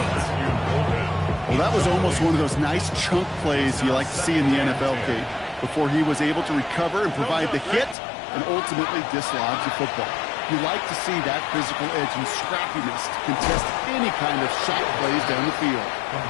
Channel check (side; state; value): right; drops out; at 8.0 s